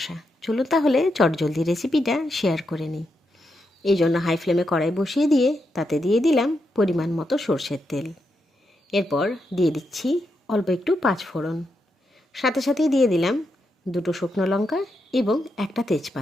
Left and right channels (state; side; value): normal; both; correlation 0.84